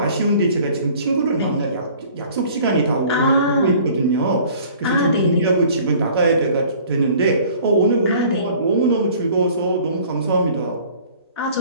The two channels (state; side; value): inverted; both; correlation -0.51